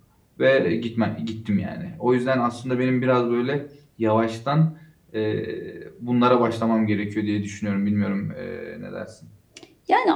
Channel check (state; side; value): identical; both; correlation 1.00